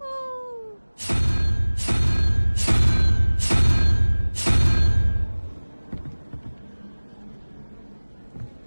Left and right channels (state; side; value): inverted; both; correlation -1.00